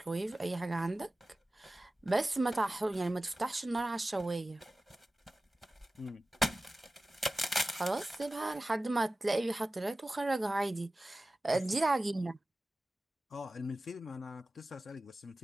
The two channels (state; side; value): normal; both; correlation 0.96